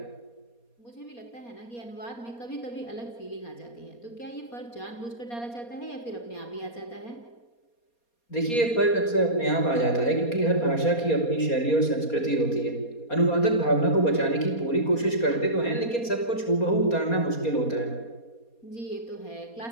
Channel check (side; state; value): right; late; 4.2 ms